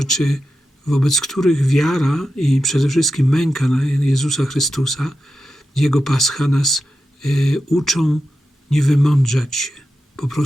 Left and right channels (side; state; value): both; normal; correlation 0.90